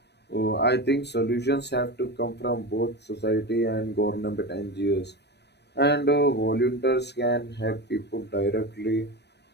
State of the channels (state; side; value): late; right; 0.49 ms